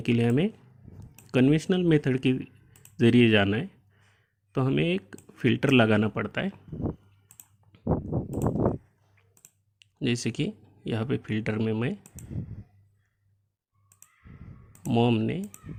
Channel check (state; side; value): identical; both; correlation 1.00